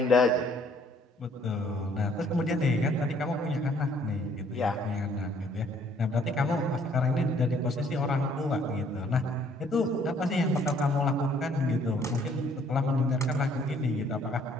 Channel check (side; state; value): both; normal; correlation 0.62